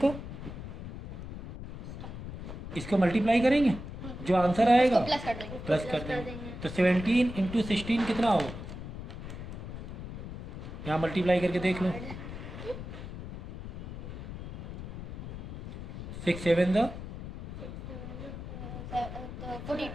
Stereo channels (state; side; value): noise; left; rumble, 9 dB below the sound